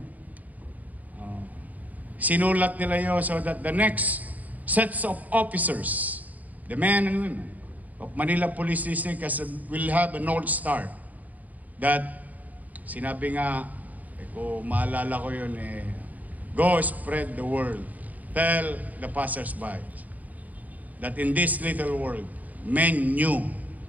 Sinulat nila yun so that the next sets of officers, the men and women of Manila Police District will have a North Star. That, sinabi nga, kung maalala ko yun, go spread the word. Tell the passers-by that in this little world, men knew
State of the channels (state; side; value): late; left; 0.076 ms